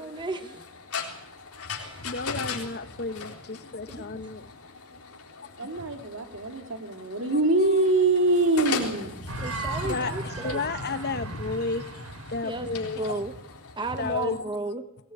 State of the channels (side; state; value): both; normal; correlation 0.01